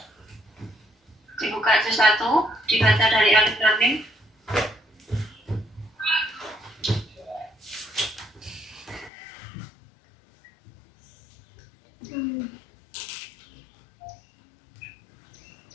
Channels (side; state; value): right; drops out; at 9.1 s